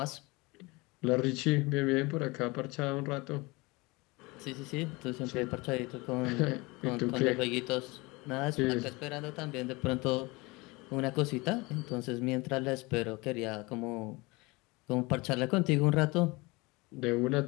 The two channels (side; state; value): right; quieter; 24.5 dB